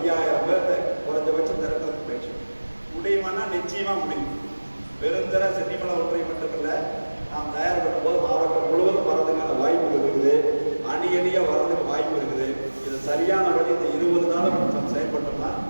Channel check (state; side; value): inverted; both; correlation -1.00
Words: பேர்த்த குறைஞ்சபட்சம் திரட்டுறதுக்கு முயற்சி முடியுமானா நிச்சயமாக முடியும். பெருந்தர சென்னிமலை ஒன்றை மட்டுமில்லை, நாம் தயார்படும் போது மாவட்டம் முழுவதும் வரதுக்கான வாய்ப்புகள் இருக்குது, அணியாக வர்றதுக்கு வாய்ப்பு இருக்குது. இது சரியான வழி இந்த 20 நாளும் நம்ம செயல்பட்டோம்னா